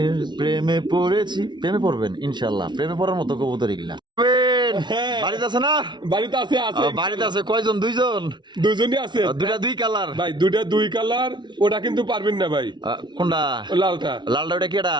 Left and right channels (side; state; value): left; late; 0.22 ms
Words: প্রেমে পড়েছি। প্রেমে পড়বেন ইনশাআল্লাহ, প্রেমে পড়ার মতো কবুতর এগুলা। হ্যাঁ। বাড়িতে আছে না? বাড়িতে আছে আছে। বাড়িতে আছে কয়জন? 2 জন? দুজনই আছে। দুইটা 2 কালার? ভাই দুইটা 2 কালার, ওটা কিন্তু পারবেন না ভাই। কোনটা? ও লালটা। লালটা ওটা কেডা?